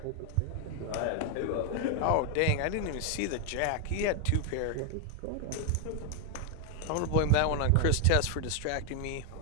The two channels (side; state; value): both; different; correlation 0.00